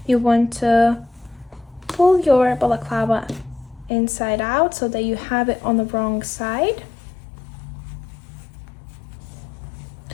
you want to pull your balaclava inside out so that you have it on the wrong side,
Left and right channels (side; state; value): right; drops out; at 3.9 s